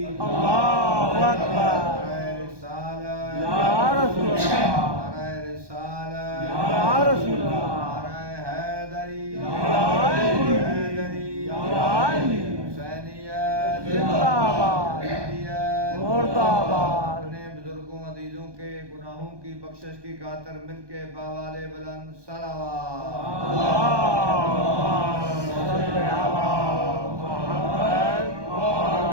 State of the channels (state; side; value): late; left; 1.2 ms